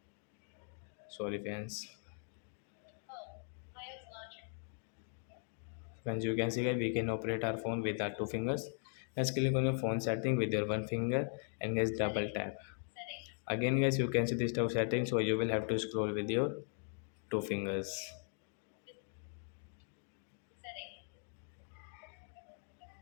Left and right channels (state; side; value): silent; right; 52 dB below the other